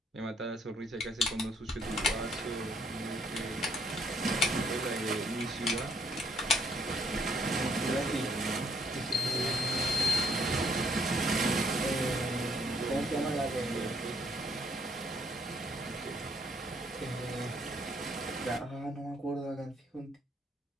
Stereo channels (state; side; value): normal; both; correlation 0.67